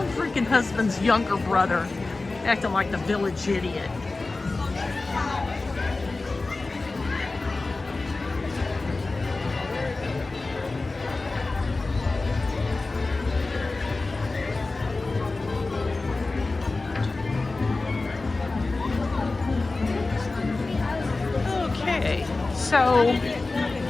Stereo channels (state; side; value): quieter; right; 3.4 dB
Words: husband's younger brother acting like the village idiot. So,